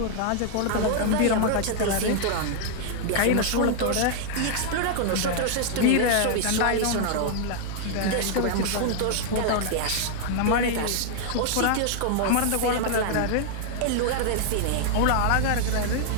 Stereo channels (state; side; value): different; both; correlation -0.01